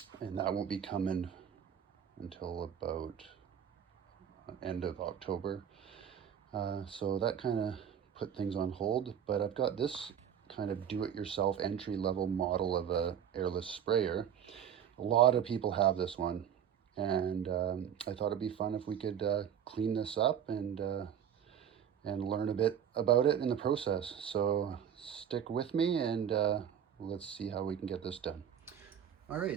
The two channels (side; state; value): left; quieter; 8.8 dB